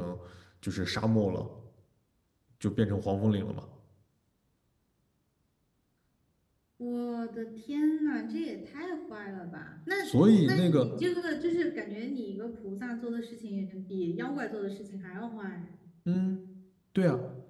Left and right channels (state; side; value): identical; both; correlation 1.00